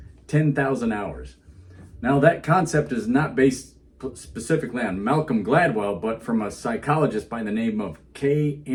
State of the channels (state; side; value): identical; both; correlation 1.00